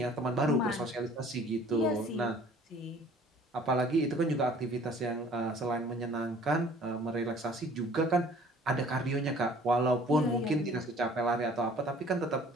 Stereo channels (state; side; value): normal; both; correlation 0.53